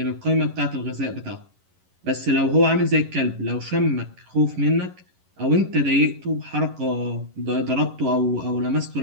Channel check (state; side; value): late; left; 11 ms